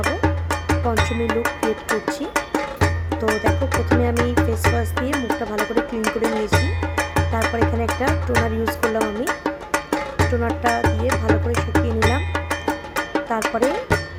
পঞ্চমী লুক ক্রিয়েট করছি। তো দেখো, প্রথমে আমি ফেস ওয়াশ দিয়ে মুখটা ভালো করে ক্লিন করে নিয়েছি। তারপর এখানে একটা টোনার ইউজ করলাম। আমি টোনারটা দিয়ে ভালো করে শুকিয়ে নিলাম। তারপরে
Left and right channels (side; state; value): both; identical; correlation 1.00